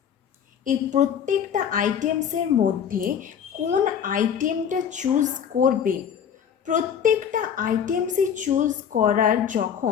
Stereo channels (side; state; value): right; quieter; 8.2 dB